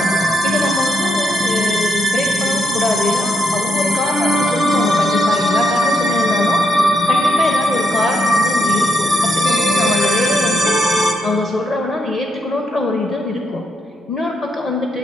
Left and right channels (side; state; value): both; normal; correlation 0.78